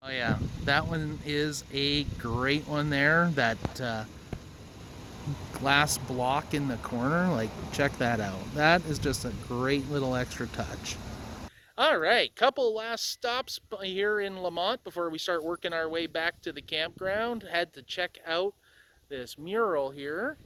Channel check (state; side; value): identical; both; correlation 1.00